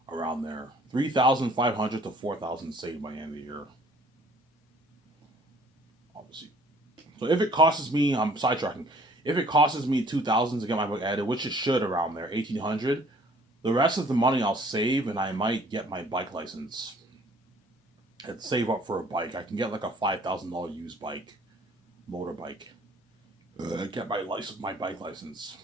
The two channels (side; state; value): both; normal; correlation 0.56